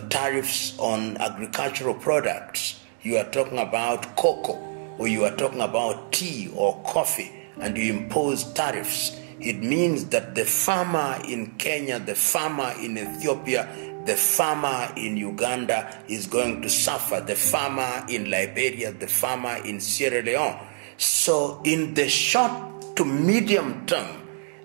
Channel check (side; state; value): left; silent; 61 dB below the other